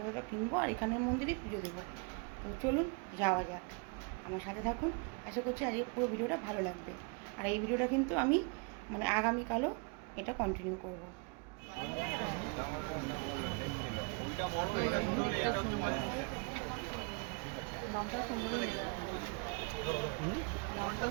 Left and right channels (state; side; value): quieter; left; 33.4 dB